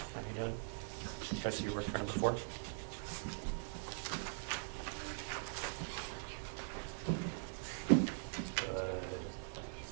How are you doing? You guys see your work for number 4?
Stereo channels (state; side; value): silent; left; digital silence